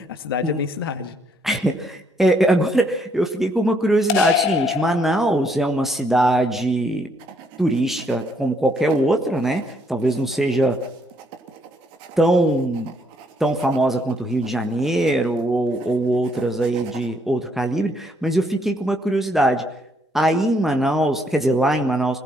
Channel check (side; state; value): both; normal; correlation 0.70